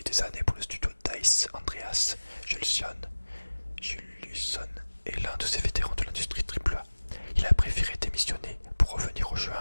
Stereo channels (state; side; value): inverted; both; correlation -1.00